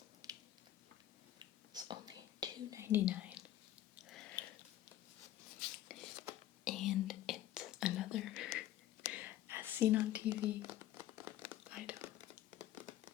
was only $2.99. And it's another as seen on TV item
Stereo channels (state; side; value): quieter; right; 13.3 dB